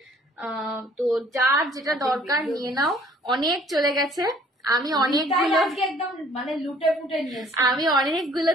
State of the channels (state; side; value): normal; both; correlation 0.58